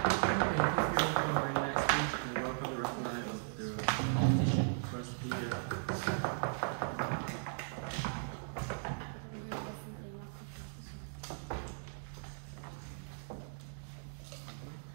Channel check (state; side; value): silent; left; digital silence